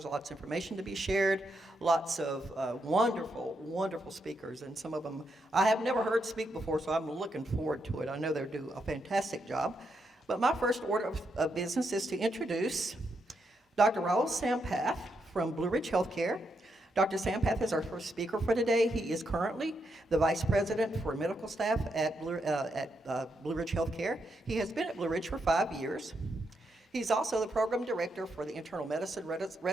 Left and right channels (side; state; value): both; normal; correlation 0.81